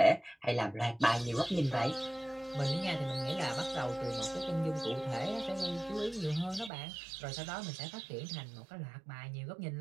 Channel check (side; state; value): left; drops out; at 6.7 s